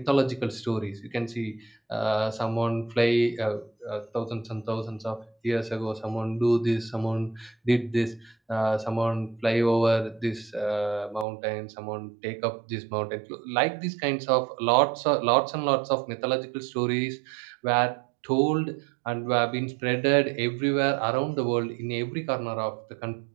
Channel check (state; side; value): drops out; left; at 11.2 s